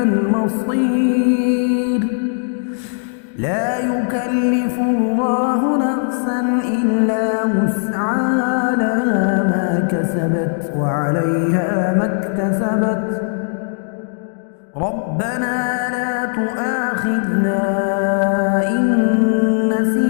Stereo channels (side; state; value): right; silent; digital silence